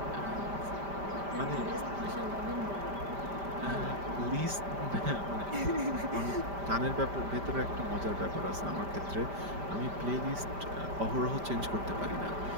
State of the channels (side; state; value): left; late; 5.1 ms